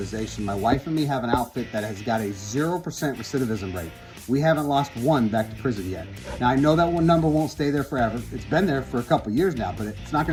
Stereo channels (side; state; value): both; identical; correlation 1.00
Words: My wife and me have an outfit that has got a 0% recidivism rate. We haven't lost one back to prison yet. Now, I know that one number won't stay there forever. It's been there for a couple years now, but it's not